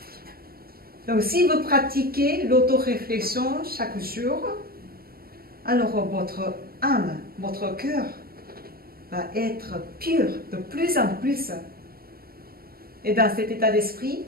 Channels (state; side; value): late; left; 0.44 ms